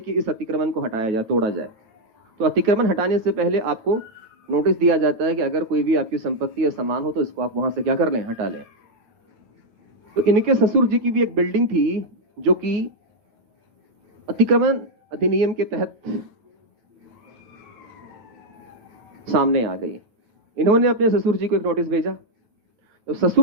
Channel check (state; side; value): late; left; 9.3 ms